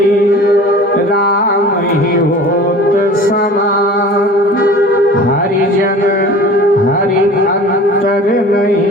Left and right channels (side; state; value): both; normal; correlation 0.42